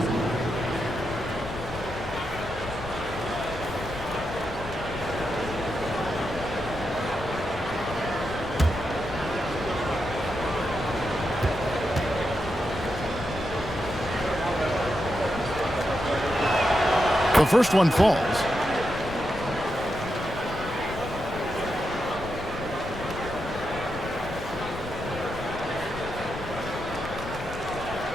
The first one falls.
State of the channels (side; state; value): left; noise; rumble, 11 dB below the sound